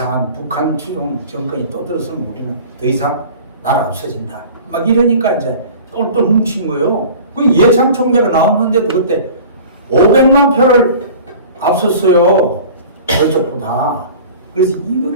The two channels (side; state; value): both; inverted; correlation -0.42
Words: 북한 추종 정권이 또 들어서면 우리는 더 이상 나라 없어진다. 막 이러니까 이제 똘똘 뭉친 거예요. 그 이해창 총재가 나왔는데도 그때 500만 표를 앞섰어요. 저쪽보다. 그래서